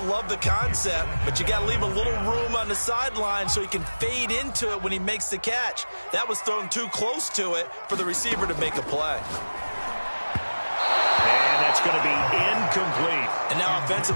the concept, but you got to leave a little room on the sideline so he can fade into it when he makes the catch. That was thrown too close to it for the receiver to make a play. And that's going to be incomplete. And now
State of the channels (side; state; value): both; inverted; correlation -1.00